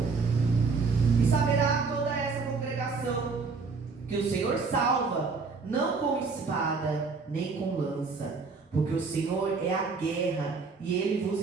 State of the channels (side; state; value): left; quieter; 4.6 dB